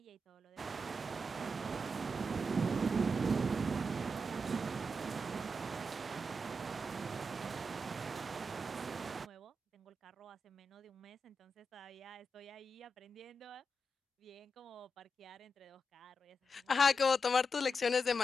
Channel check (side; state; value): both; normal; correlation 0.86